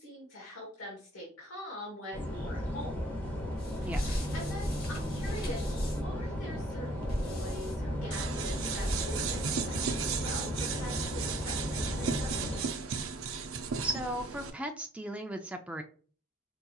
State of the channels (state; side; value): normal; both; correlation 0.60